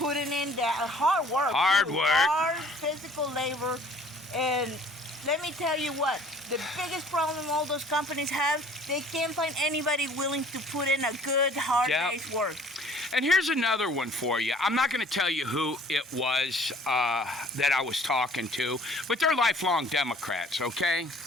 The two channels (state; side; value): normal; both; correlation 0.53